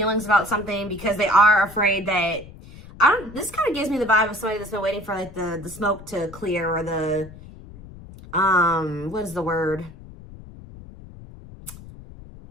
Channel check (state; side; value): noise; left; rumble, 17 dB below the sound